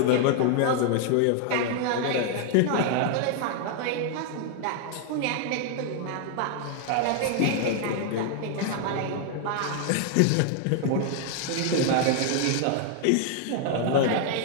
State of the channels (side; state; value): both; different; correlation 0.00